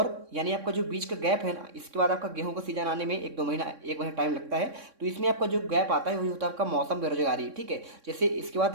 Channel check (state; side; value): late; left; 3.6 ms